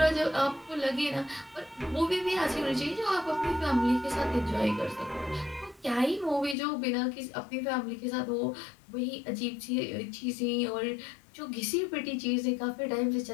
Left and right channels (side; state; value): right; drops out; at 6.6 s